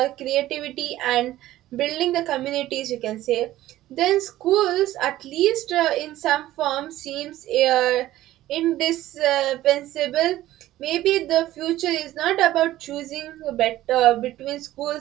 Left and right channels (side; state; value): left; quieter; 14.8 dB